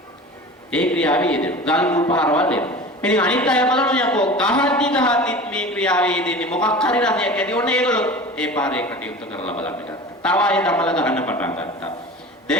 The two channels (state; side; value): normal; both; correlation 0.36